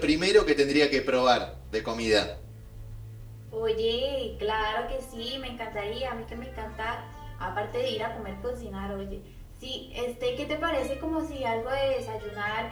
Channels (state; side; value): identical; both; correlation 1.00